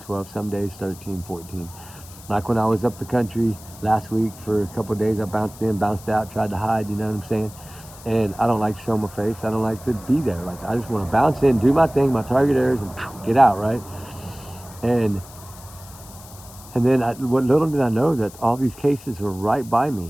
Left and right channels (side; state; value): left; noise; hiss, 19 dB below the sound